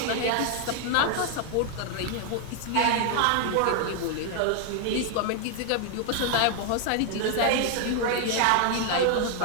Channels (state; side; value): different; both; correlation 0.00